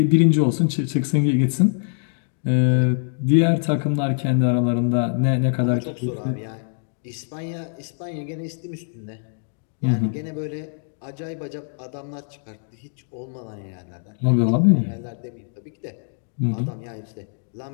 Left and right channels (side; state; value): right; silent; digital silence